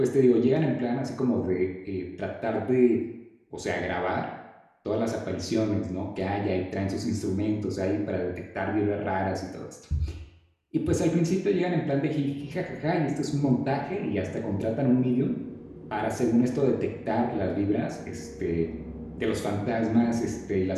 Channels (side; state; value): both; identical; correlation 1.00